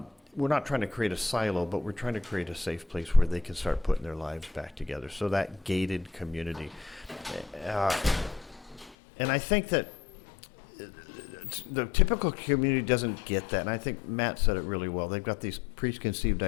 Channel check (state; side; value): drops out; right; at 9.0 s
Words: We're not trying to create a silo, but we're trying to create a safe place where they can start putting their lives back together. So that gated community. And I think that the typical community doesn't get that. And I think Matt said it really well. They've got these preconceived